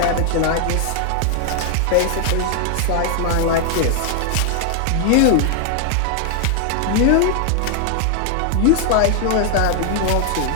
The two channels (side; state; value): both; different; correlation 0.00